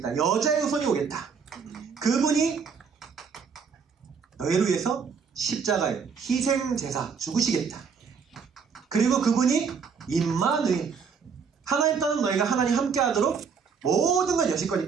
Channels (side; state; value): left; quieter; 6.0 dB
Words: 여자의 후손이 오겠다. 그분이 너희를 위해서 십자가에 희생제사 죽으시겠다. 그리고 그분이 임마누엘, 하나님 떠난 너희가 하나님 함께하도록 모든 걸 여실